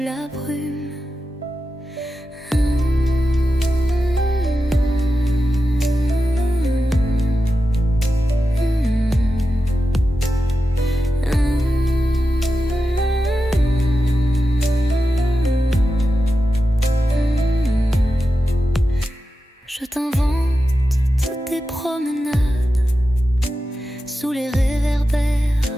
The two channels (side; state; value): both; normal; correlation 0.91